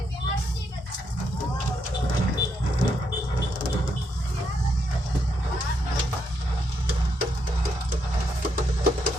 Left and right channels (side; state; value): both; normal; correlation 0.79